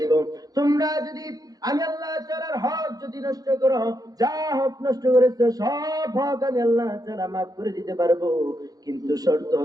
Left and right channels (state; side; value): late; left; 0.18 ms